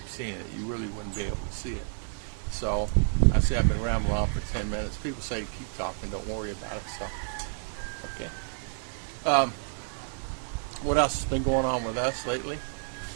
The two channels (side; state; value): left; silent; digital silence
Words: seeing it. You really wouldn't be able to see it. So I say I've been rambling on for 10 minutes. People say keep talking, don't worry about it. So, okay. What else has been going on with us lately?